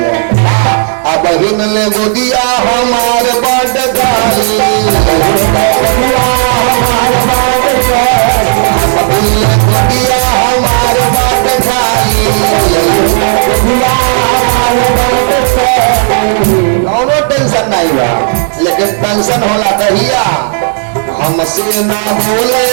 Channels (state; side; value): silent; left; digital silence